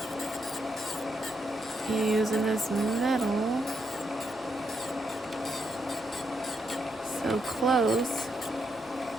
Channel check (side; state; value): both; normal; correlation 0.80